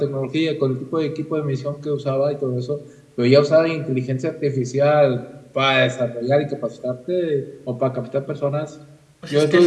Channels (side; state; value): both; identical; correlation 1.00